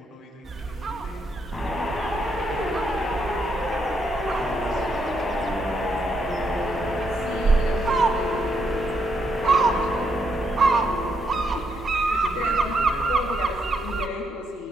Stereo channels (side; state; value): both; normal; correlation 0.78